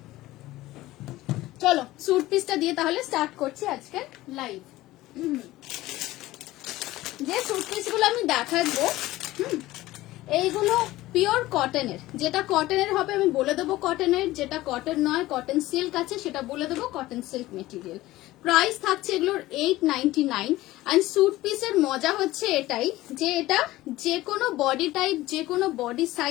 চলো স্যুট পিসটা দিয়ে তাহলে স্টার্ট করছি আজকে লাইভ। যে স্যুট পিসগুলো আমি দেখাবো এইগুলো পিওর কটনের, যেটা কটনের হবে আমি বলে দেবো কটনের, যেটা কটন নয় কটন সিল্ক আছে সেটা বলে দেবো কটন সিল্ক মেটেরিয়াল। প্রাইস থাকছে এগুলোর 899। অ্যান্ড স্যুট পিসের মজা হচ্ছে এটাই যে এটা যে কোনো বডি টাইপ, যে কোনো বডি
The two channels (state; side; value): quieter; right; 17.2 dB